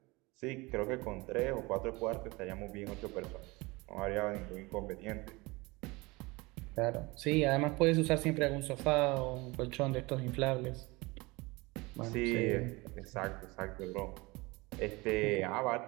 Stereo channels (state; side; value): quieter; left; 23.8 dB